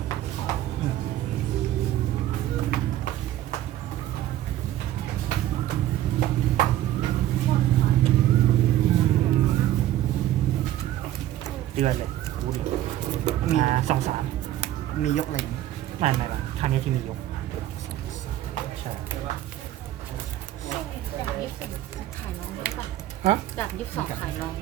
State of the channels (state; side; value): quieter; left; 13.3 dB